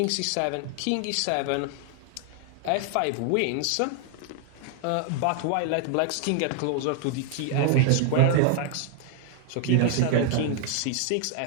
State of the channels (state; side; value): different; both; correlation 0.00